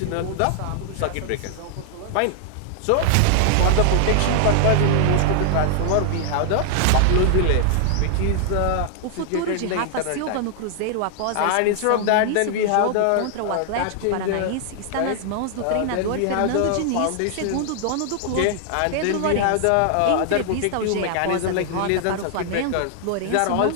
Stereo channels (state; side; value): different; both; correlation 0.00